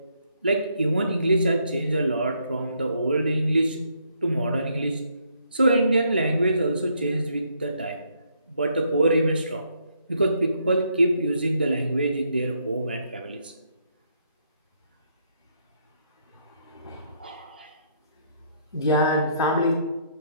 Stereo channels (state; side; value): inverted; both; correlation -0.72